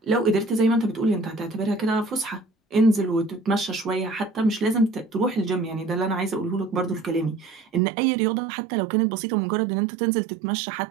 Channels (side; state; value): left; drops out; at 7.8 s